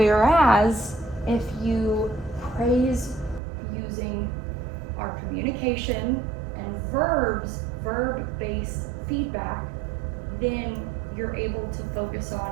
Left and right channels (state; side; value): drops out; left; at 3.4 s